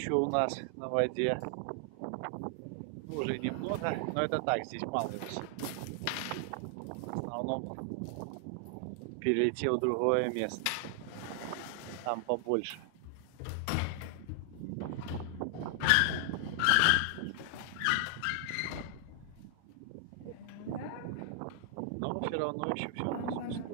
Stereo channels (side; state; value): both; different; correlation 0.00